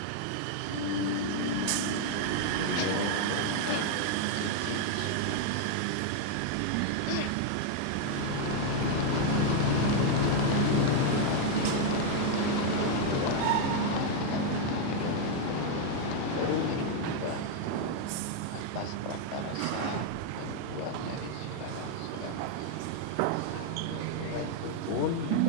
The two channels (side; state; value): both; different; correlation 0.00